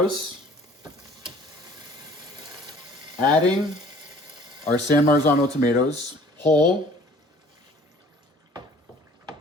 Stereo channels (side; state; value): both; normal; correlation 0.52